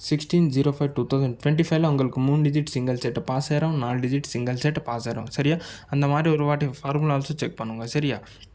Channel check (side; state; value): both; identical; correlation 1.00